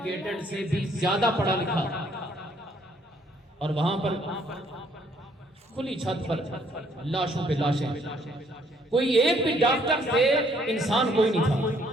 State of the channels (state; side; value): normal; both; correlation 0.66